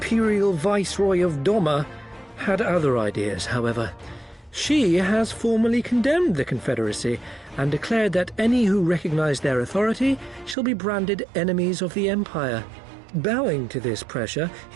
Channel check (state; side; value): drops out; left; at 10.6 s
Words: Viceroy of Doma had other ideas, however. She has formally condemned the Confederacy and declared that any who recognize their authority shall be branded enemies of the Empire. Bowing to this pressure,